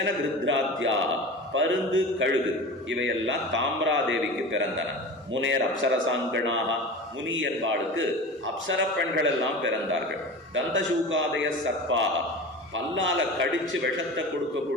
பருந்து கழுகு இவையெல்லாம் தாம்ராதேவிக்கு பிறந்தன. முனேர் அப்சரசாங்கனாக, முனி என்பாளுக்கு அப்சர பெண்கள் எல்லாம் பிறந்தார்கள். தந்தசூகாதய சர்ப்பாக, பல்லால கடிச்சு விஷத்தை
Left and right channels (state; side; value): normal; both; correlation 0.32